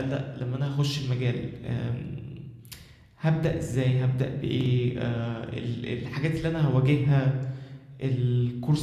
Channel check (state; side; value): identical; both; correlation 1.00